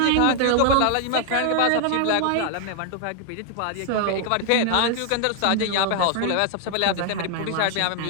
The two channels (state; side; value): different; both; correlation 0.00